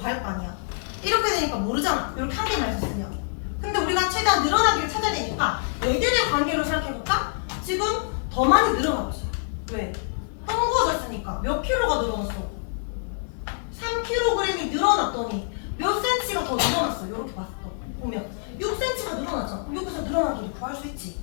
거 아니야. 이렇게 되니까 모르잖아. 이렇게 한 개만 있었으면. 근데 우리가 최대한 늘어난 길을 찾아야 되니까 얘들의 관계로 생각해볼까? 지금 더 많이 늘어나고 있어. 왜? 헝구어졌으니까. 몇 킬로가 늘어났어? 3kg이 늘어났더니 몇 cm가 더 늘어났어. 이렇게 봤어. 보면 6cm가 늘어났잖아. 여기서 늘어난 길을 구할 수 있지.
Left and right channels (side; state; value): right; silent; 61 dB below the other